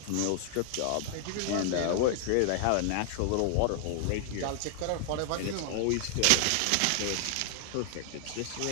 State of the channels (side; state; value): both; different; correlation -0.01